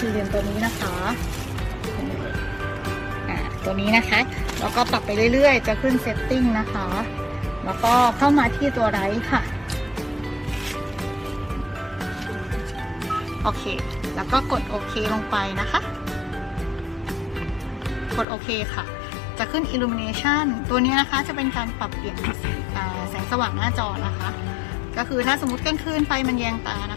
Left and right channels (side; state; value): right; drops out; at 18.2 s